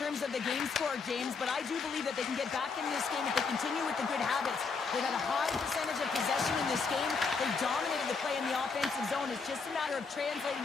of the game score, James, but I do believe that they can get back in this game if they continue with the good habits. They've had a high percentage of possession in this game. They've dominated the play in the offensive zone. It's just a matter of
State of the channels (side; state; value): right; quieter; 4.9 dB